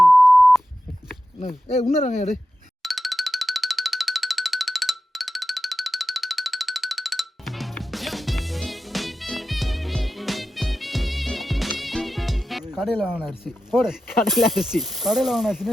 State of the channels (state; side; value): normal; both; correlation 0.92